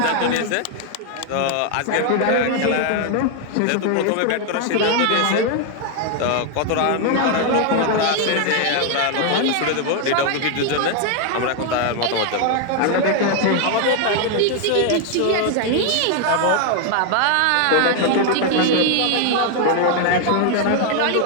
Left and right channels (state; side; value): different; both; correlation 0.00